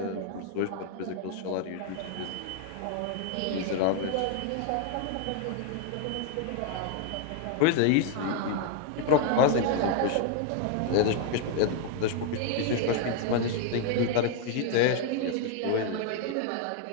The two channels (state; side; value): different; both; correlation 0.00